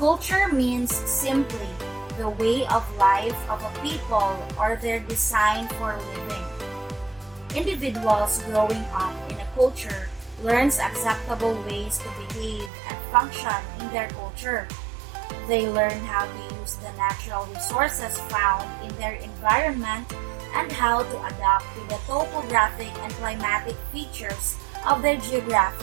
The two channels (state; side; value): drops out; left; at 12.7 s